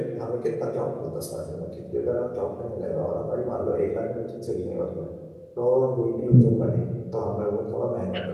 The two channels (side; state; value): both; identical; correlation 1.00